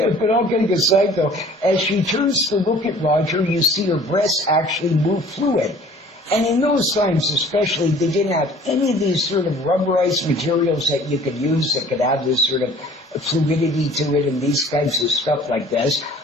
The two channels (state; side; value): normal; both; correlation 0.50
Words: but all kidding aside though, as she turns to look at Roger, you see her breasts actually move fluid. And in those times especially, they didn't have any of these sort of rubberized materials that you could use that could have this sort of fluidity to it and these kinds of stuff like this.